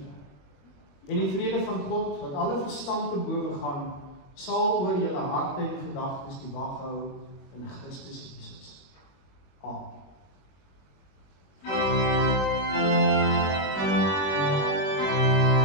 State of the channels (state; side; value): late; right; 21 ms